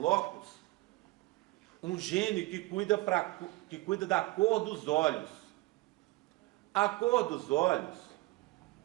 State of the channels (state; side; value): quieter; left; 20.8 dB